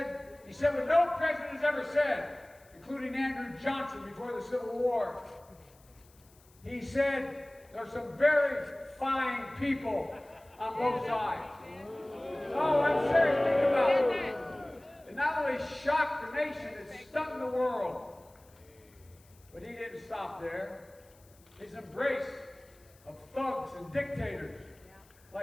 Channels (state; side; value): noise; left; hiss, 29 dB below the sound